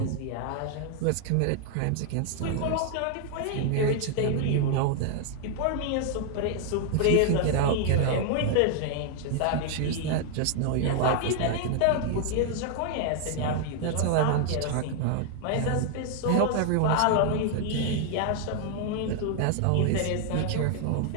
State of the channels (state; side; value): different; both; correlation 0.00